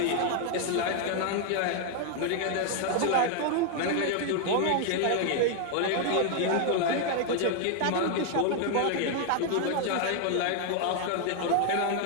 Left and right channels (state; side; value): different; both; correlation 0.00